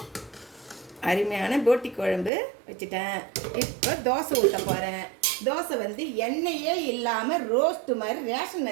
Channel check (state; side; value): drops out; left; at 2.3 s